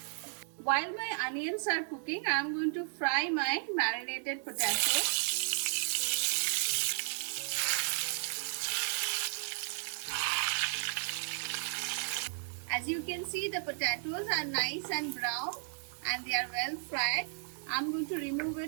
While my onions are cooking, I am going to fry my marinated potatoes. As you can see, the potatoes are nice and brown and they are well fried. I am going to remove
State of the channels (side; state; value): left; silent; digital silence